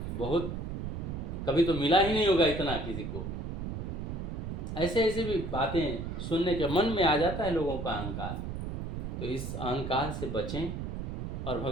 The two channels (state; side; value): noise; right; rumble, 4 dB below the sound